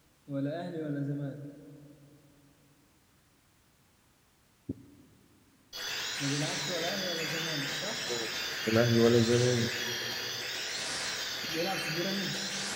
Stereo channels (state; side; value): identical; both; correlation 1.00